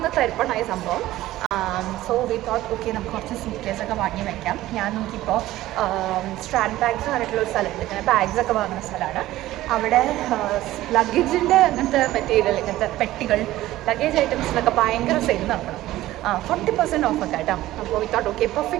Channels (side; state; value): left; quieter; 15.7 dB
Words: തരിപ്പണായ സംഭവം. സോ വി തോട്ട് ഓക്കെ നമുക്ക് കുറച്ച് സൂട്ട് കേസൊക്കെ വാങ്ങി വയ്ക്കാം. ഞാൻ നോക്കിയപ്പോൾ സ്ട്രാൻഡ് ബാഗ്സ് പറഞ്ഞിട്ടുള്ള ഒരു സ്ഥലമുണ്ട്. ഇങ്ങനെ ബാഗ്സൊക്കെ വാങ്ങുന്ന സ്ഥലമാണ്. അവിടെ ലഗേജിൻ്റെ അങ്ങനത്തെ മെറ്റീരിയൽ, ഇങ്ങനത്തെ പെട്ടികൾ, ലഗേജ് ഐറ്റംസിനൊക്കെ ഭയങ്കര സെയിൽ നടക്കണം. 40% ഓഫൊക്കെ കേട്ടോ. അപ്പോൾ വി തോട്ട് ഓക്കെ